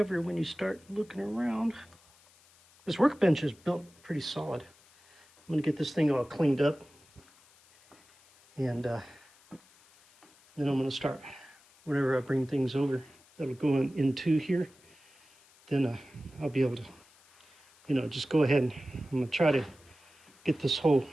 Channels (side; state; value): left; noise; hiss, 28 dB below the sound